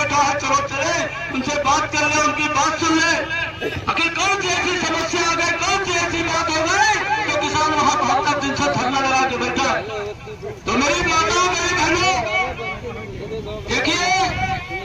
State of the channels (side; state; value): both; identical; correlation 1.00